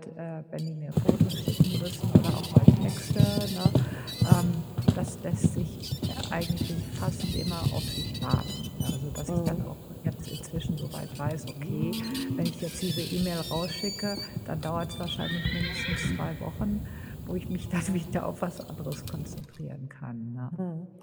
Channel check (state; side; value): identical; both; correlation 1.00